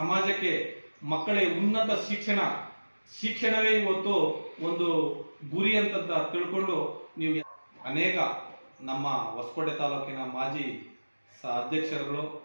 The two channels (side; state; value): both; inverted; correlation -1.00